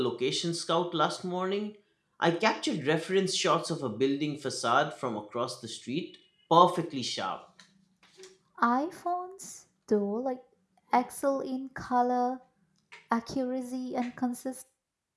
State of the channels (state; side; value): identical; both; correlation 1.00